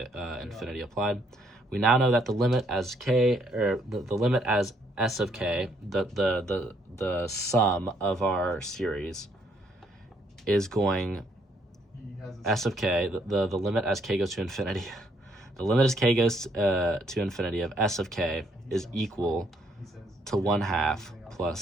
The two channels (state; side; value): normal; both; correlation 0.70